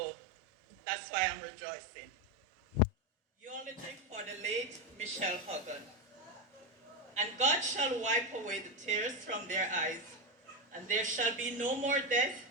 that's why I'm rejoicing. Eulogy for the late Michelle Huggan. And God shall wipe away the tears from their eyes, and there shall be no more death,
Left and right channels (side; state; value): both; normal; correlation 0.12